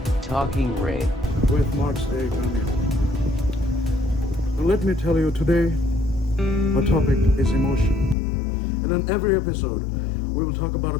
Talking Rain, with Mark's A. Daniel. Now let me tell you, today our topic is emotion. And in every episode, we will talk about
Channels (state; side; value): drops out; right; at 8.2 s